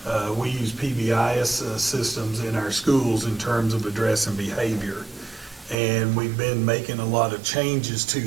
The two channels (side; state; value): left; drops out; at 5.8 s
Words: We use PBIS systems in our schools in terms of addressing behavior. And we've been making a lot of changes to